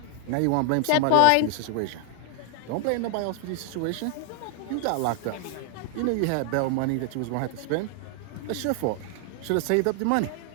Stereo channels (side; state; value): both; different; correlation 0.00